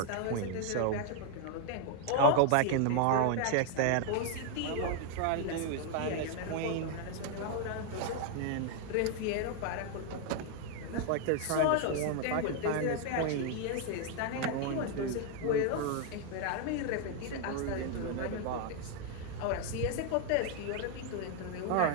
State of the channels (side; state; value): both; different; correlation 0.00